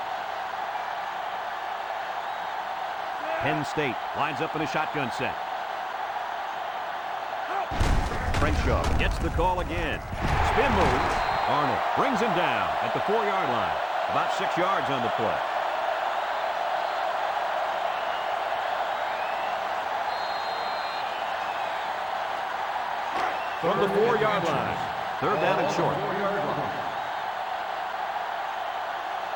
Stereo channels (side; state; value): both; identical; correlation 1.00